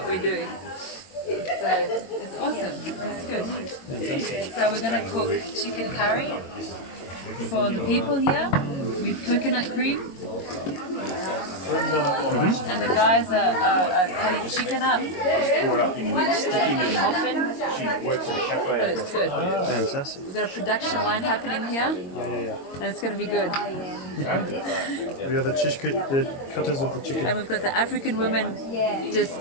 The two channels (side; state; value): right; late; 22 ms